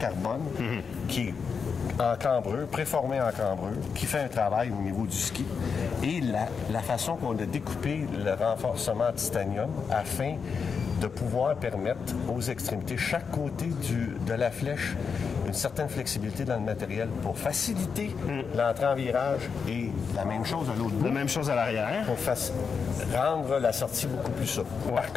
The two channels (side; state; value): right; quieter; 5.8 dB